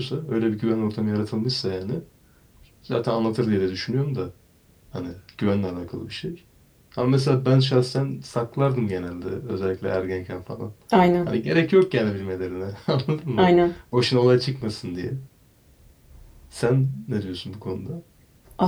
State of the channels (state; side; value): identical; both; correlation 1.00